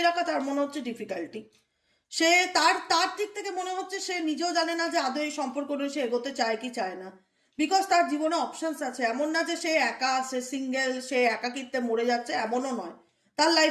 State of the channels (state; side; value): identical; both; correlation 1.00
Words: রাখা তার মনে হচ্ছে ডিফিকাল্টি। সে তার তার দিক থেকে মনে হচ্ছে সে নিজেও জানে না যে আদৌ এই সম্পর্ক নিয়ে সে এগোতে চায় কি চায় না। বিকজ তার জীবনে অপশনস আছে, এমন না যে সে একা, সে সিঙ্গেল, সে একাকিত্বে মরে যাচ্ছে, এমনও নয়। তার